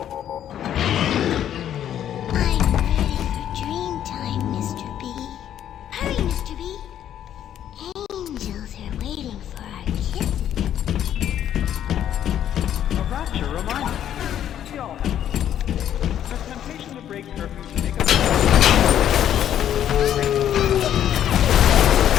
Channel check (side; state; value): right; quieter; 10.5 dB